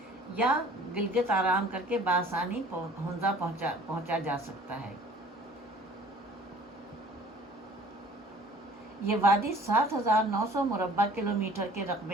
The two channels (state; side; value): normal; both; correlation 0.51